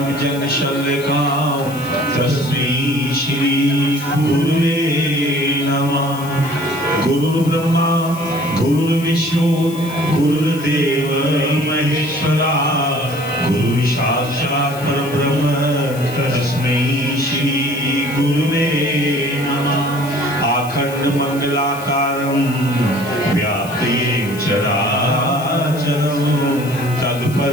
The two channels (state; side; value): noise; left; hiss, 16 dB below the sound